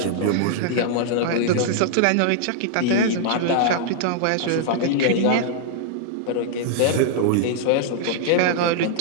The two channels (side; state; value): both; different; correlation -0.01